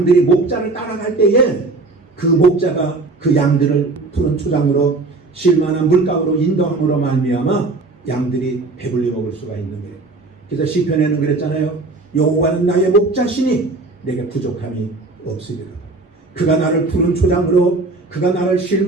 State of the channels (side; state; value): left; quieter; 3.4 dB